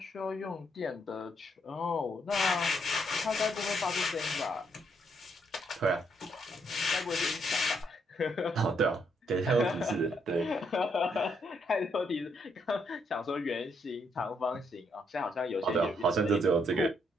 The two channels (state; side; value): normal; both; correlation 0.74